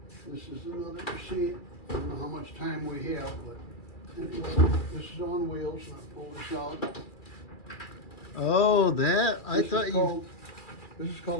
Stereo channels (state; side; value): late; right; 2.3 ms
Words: This is another machine. I don't know how much time we have, but anyway, this is on wheels, and I pull this out. Oh, that I thought you. This is